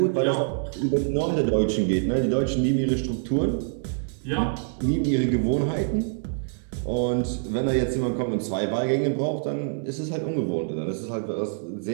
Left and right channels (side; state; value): left; silent; 61 dB below the other